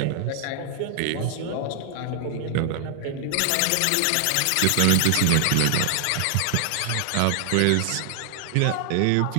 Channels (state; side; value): different; both; correlation 0.00